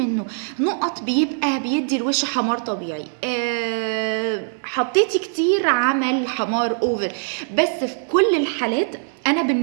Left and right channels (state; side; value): silent; left; digital silence